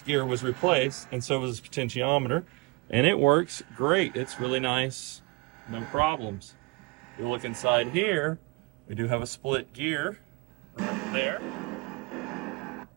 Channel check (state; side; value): quieter; left; 26.0 dB